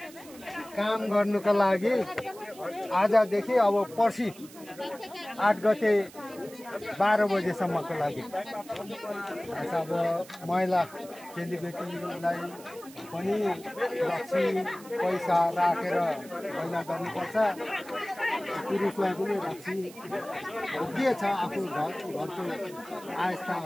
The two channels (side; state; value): right; noise; hiss, 20 dB below the sound